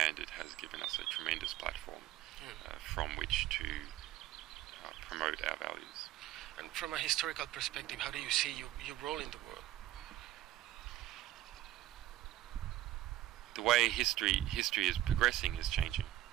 it has given us a tremendous platform from which to promote our values. And from a historical perspective, how do you see your role in the world? The way history is progressing is changing.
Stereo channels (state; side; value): quieter; left; 14.2 dB